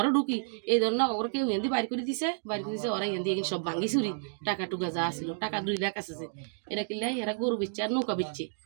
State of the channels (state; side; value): silent; left; digital silence